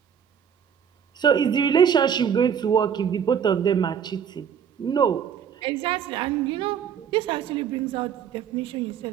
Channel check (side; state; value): left; quieter; 7.9 dB